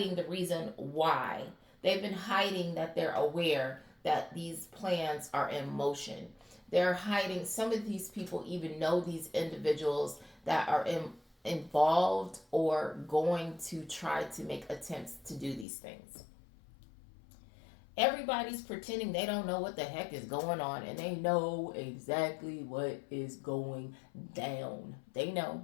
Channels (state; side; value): drops out; right; at 15.7 s